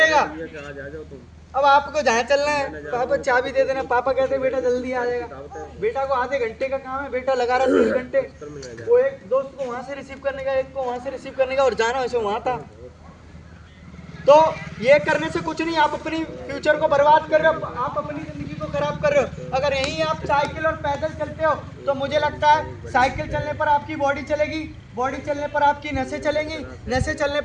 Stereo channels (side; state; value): both; identical; correlation 1.00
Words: अब आपको जहाँ चलना है पापा चाबी दे देना, पापा कहते बेटा जल्दी आ जाएगा। बेटा को आधे घंटे का काम है, बेटा लगा रहा 3 घंटे, वो एक दोस्त को वहां से रिसीव करने का, एक को वहां से रिसीव करने का, और जाना वैसे वहां था। तो ये करने से कुछ नहीं, आप अपनी फ्यूचर को बर्बाद कर रहे हो, आप अपनी जिंदगी को खराब कर रहे हो। अगर यहीं आप साइकिल और पैदल चलते हो तो मुझे लगता है साइकिल चलने पर आपकी बॉडी चलेगी, बॉडी चलने पर आपकी नसें चलेंगी, नसें चलने